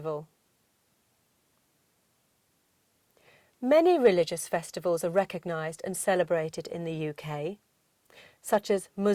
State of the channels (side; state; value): both; identical; correlation 1.00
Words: Many religious festivals are recognised and celebrated in the UK, such as